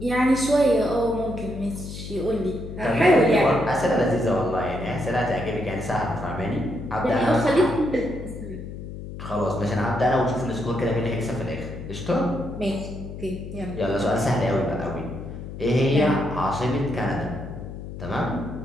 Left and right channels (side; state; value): left; noise; hum, 10 dB below the sound